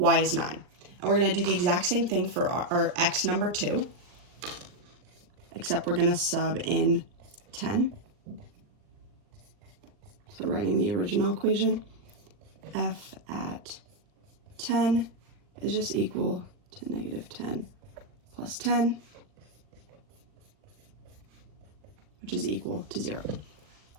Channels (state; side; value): late; left; 39 ms